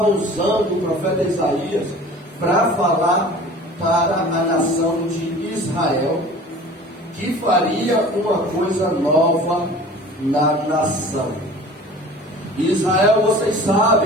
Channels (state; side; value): normal; both; correlation 0.43